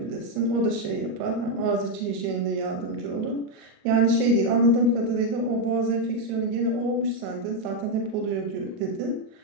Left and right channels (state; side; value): late; left; 38 ms